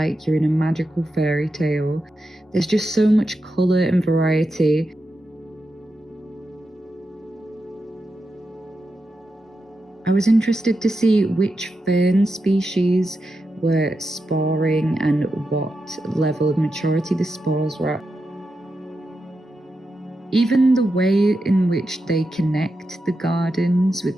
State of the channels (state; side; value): normal; both; correlation 0.88